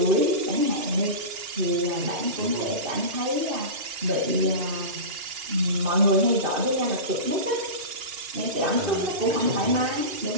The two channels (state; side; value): late; left; 2.8 ms